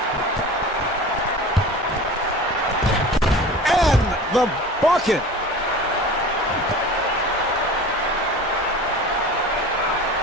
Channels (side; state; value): both; normal; correlation 0.37